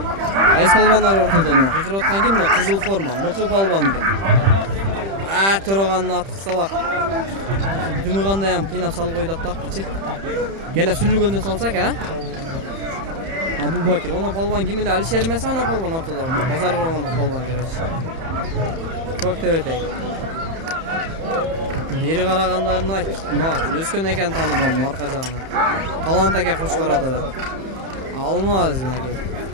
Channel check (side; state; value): left; late; 31 ms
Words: Айс палбандар ортодон. Кыйкырып аткан ким мына кызыл форма, мыкы палбан экен. Төраганын аты кысталак. Дымыгандай ham кыйнап салып койду аттапчы. Келе сүрүлгөндө салсак, Абубакир, она палбан ким эле Алишер эмес, она палбан ортодо. Базар кылгондук палбан керечи. Көктөбөтөй. Бери карагандарын айт. Өскөн экен таанымадым арка жагынан. Талант эке Кошкарада да. Алмаз мына.